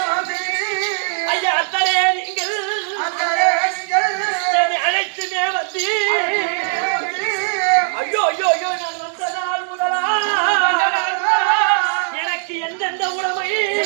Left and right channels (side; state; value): left; silent; 66 dB below the other